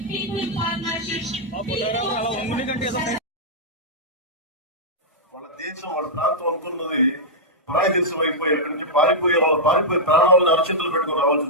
వాళ్ళ దేశం వాళ్ళ ప్రాంతం అనుకున్నది పరాయి దేశం అయిపోయి అక్కడి నుంచి పారిపోయి ప్రాణాలను అరచేతులు పెట్టుకుని రావాల్సి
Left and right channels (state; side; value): normal; both; correlation -0.08